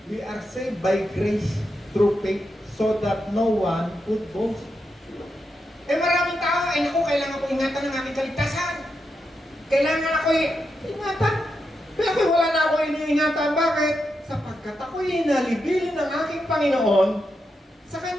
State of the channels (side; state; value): both; normal; correlation 0.85